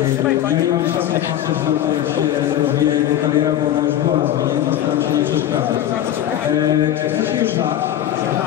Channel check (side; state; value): right; quieter; 11.7 dB